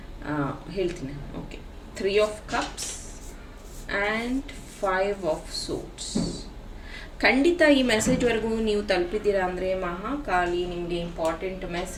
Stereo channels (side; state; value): both; identical; correlation 1.00